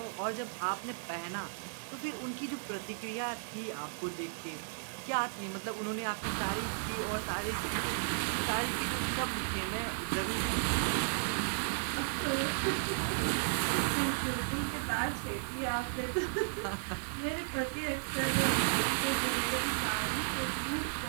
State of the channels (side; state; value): left; silent; digital silence